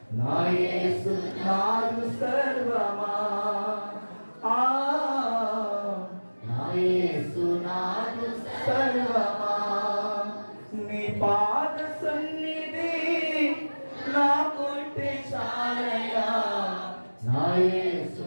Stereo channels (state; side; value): inverted; both; correlation -1.00